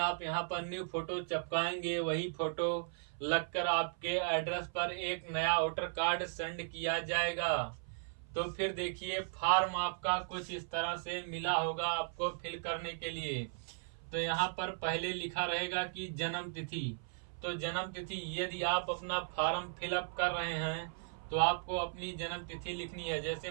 आप यहाँ पर न्यू फोटो चिपकाएंगे वही फोटो लगकर आपके एड्रेस पर एक नया वोटर कार्ड सेंड किया जाएगा। तो फिर देखिए फॉर्म आपका कुछ इस तरह से मिला होगा आपको फिल करने के लिए। तो यहाँ पर पहले लिखा रहेगा कि जन्म तिथि। तो जन्म तिथि, यदि आप अपना फॉर्म फिलअप कर रहे हैं तो आपको अपनी जन्म तिथि लिखनी है। जैसे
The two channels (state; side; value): silent; left; 53 dB below the other